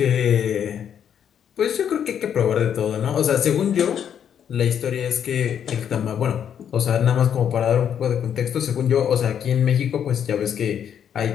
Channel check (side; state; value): right; quieter; 8.8 dB